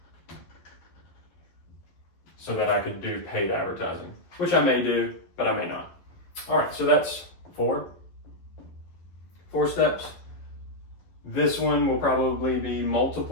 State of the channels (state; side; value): late; right; 11 ms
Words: so that I could do paid advertising, which I may do, but I may not. All right, so that's 4 steps. This one will probably be